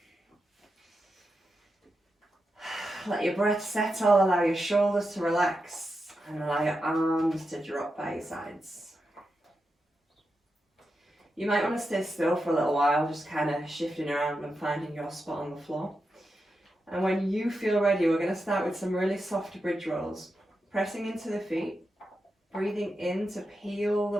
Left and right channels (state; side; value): normal; both; correlation 0.88